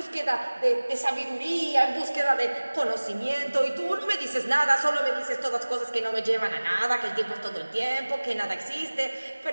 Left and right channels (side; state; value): both; inverted; correlation -1.00